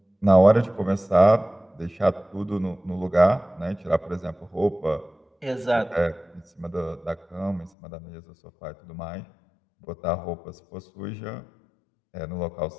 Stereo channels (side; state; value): right; drops out; at 7.7 s